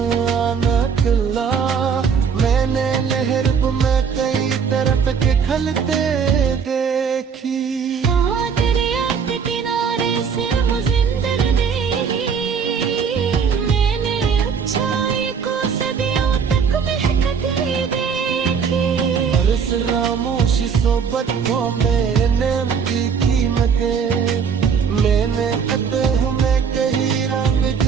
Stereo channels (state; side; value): quieter; left; 6.5 dB